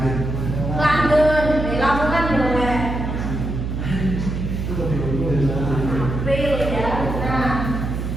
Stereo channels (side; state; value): right; noise; hum, 3 dB below the sound